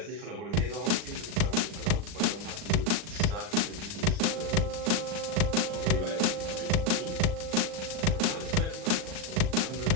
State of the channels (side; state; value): left; late; 39 ms